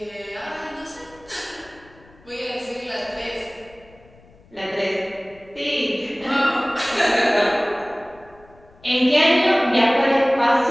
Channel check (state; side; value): noise; left; rumble, 27 dB below the sound